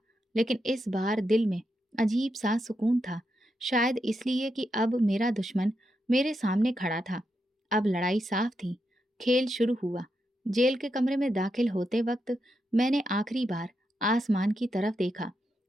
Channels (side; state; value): both; normal; correlation 0.84